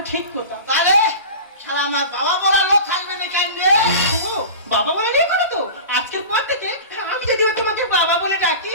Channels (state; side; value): inverted; both; correlation -0.33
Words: ঠিক কথা। তাহলে শালা আমার বাবা বলা লোক থাকবে না কেন রে? ও বাবা বলে নিয়ে করো তো আজকের পর থেকে আমি যদি তোমাকে বাবা বলে ডাকি।